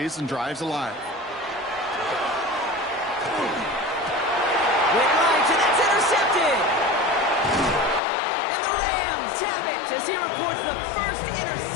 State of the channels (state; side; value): drops out; right; at 8.0 s